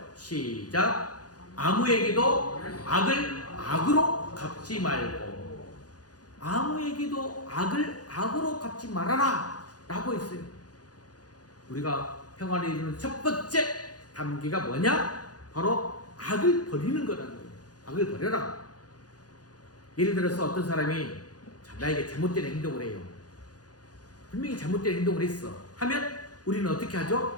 시작. 아무에게도 악을 악으로 갚지 말고, 아무에게도 악을 악으로 갚지 말아라 라고 했어요. 우리가 평화를 이루는 첫 번째 단계가 뭐냐? 바로 악을 버리는 거라는 거예요. 악을 버려라. 예를 들어서 어떤 사람이 나에게 잘못된 행동을 해요. 분명히 잘못된 행동을 했어. 하면 우리는 어떻게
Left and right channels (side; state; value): right; late; 0.68 ms